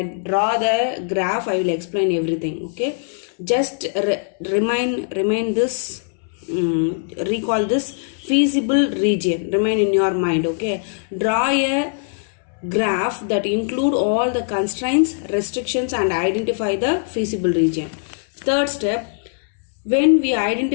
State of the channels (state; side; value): silent; right; 65 dB below the other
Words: draw the graph, I will explain everything. Okay, just remain this, recall this feasible region, remain in your mind. Okay, draw a graph that include all the constraints, restrictions and identify the feasible region. Third step, when we